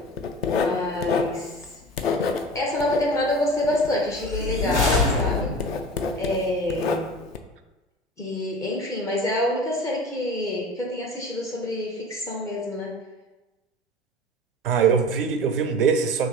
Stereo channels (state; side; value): normal; both; correlation 0.36